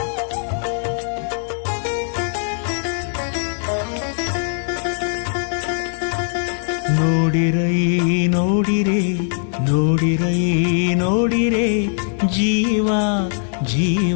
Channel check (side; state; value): right; silent; digital silence